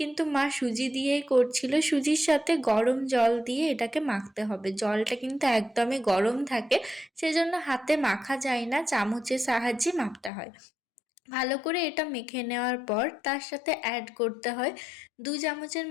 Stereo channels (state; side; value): drops out; right; at 10.3 s